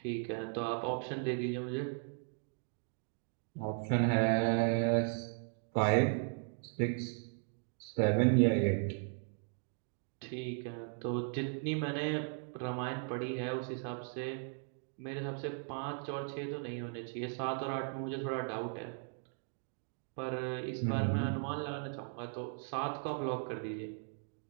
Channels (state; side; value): silent; left; 53 dB below the other